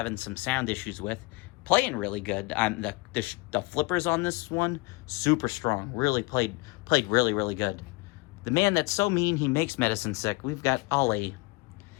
some sound issues with. Playing really good. The flippers on this one, super strong. Really played really, really good. The man that's so mean he makes medicine sick. We've got Ali.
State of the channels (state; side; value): quieter; right; 25.5 dB